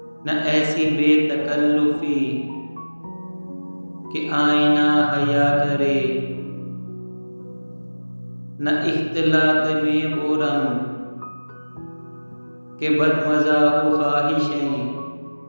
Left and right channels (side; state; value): both; inverted; correlation -1.00